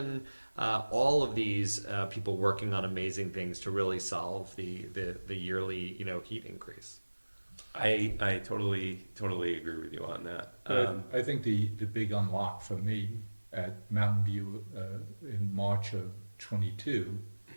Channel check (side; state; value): both; inverted; correlation -1.00